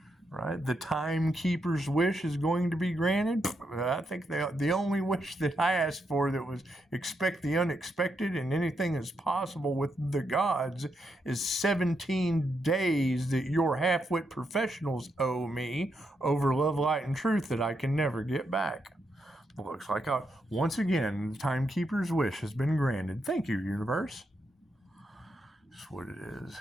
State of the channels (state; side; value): normal; both; correlation 0.81